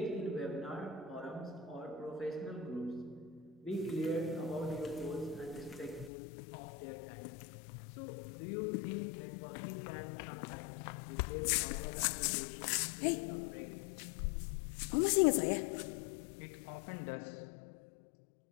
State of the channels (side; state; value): right; drops out; at 6.1 s